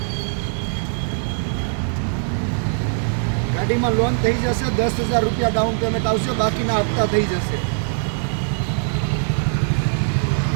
ગાડીમાં લોન થઈ જશે. 10,000 રૂપિયા ડાઉન પેમેન્ટ આવશે. બાકીના હપ્તા થઈ જશે.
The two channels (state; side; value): silent; left; digital silence